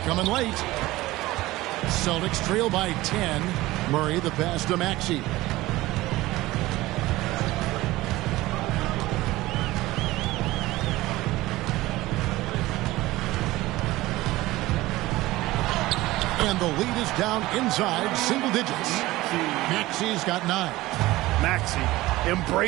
coming late. Celtics trail by 10. Murray the pass to Maxey. And the lead is down inside single digits. Maxey's got 9. Maxey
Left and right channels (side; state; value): left; quieter; 18.2 dB